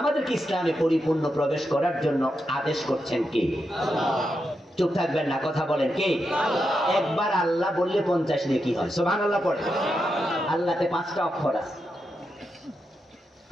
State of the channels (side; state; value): both; normal; correlation 0.86